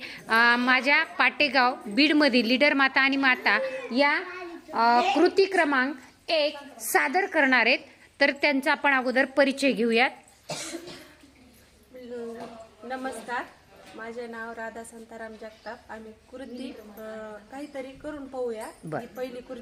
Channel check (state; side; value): identical; both; correlation 1.00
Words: माझ्या पाटेगाव बीडमधील लीडर माता आणि माता या कृती क्रमांक 1 सादर करणार आहेत. तर त्यांचा आपण अगोदर परिचय घेऊयात. नमस्कार, माझे नाव राधा संताराम जगताप. आम्ही कृती काहीतरी करून पाहूया. ही पहिली